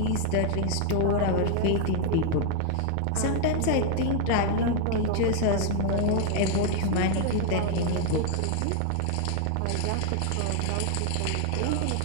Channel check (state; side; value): different; both; correlation 0.00